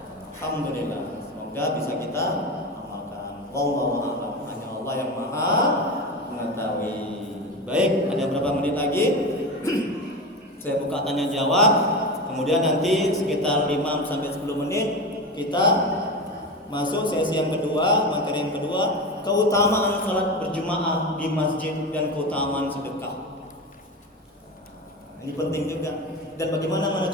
Alhamdulillah. Semoga bisa kita amalkan. Wallahu a'lam. Hanya Allah yang Maha mengetahui. Baik, ada berapa menit lagi? Saya buka tanya jawab. Kemudian nanti sekitar 5 sampai 10 menit kita masuk sesi yang kedua, materi yang kedua, keutamaan salat berjamaah di masjid dan keutamaan sedekah. Ini penting juga. Dan bagaimana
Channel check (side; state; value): both; normal; correlation 0.23